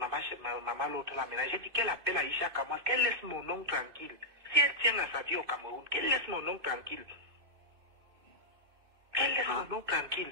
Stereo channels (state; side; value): late; left; 2.5 ms